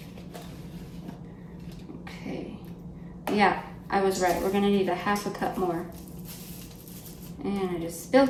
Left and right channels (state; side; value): identical; both; correlation 1.00